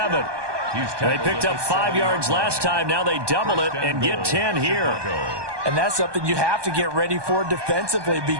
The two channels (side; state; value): left; late; 1.2 ms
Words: They picked up 5 yards last time. Now they double it and get 10 here. And that's something you have to get ready for defensively